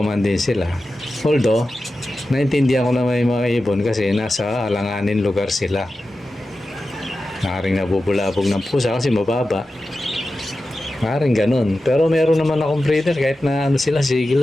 din sila. Although, naintindihan ko na may mga ibon kasi nasa alanganin lugar sila. Maaaring nabubulabog ng pusa kasi mababa. Maaaring ganun. Pero meron naman akong breeder kahit na sila, sige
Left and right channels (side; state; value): both; normal; correlation 0.93